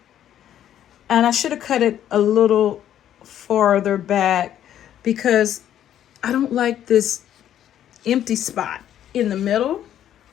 and I should have cut it a little farther back because I don't like this empty spot in the middle.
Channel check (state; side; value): quieter; right; 10.9 dB